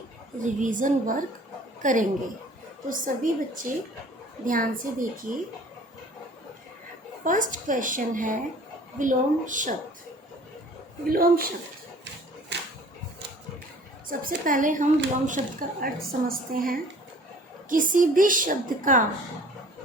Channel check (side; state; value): both; normal; correlation 0.50